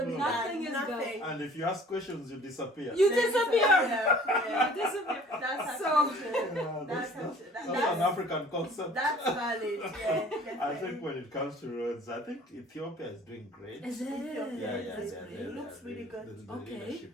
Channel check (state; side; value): normal; both; correlation 0.51